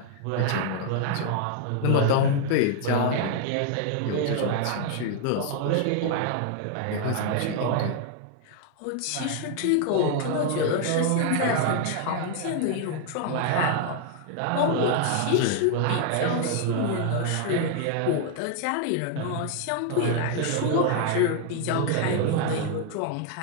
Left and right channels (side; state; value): both; different; correlation 0.00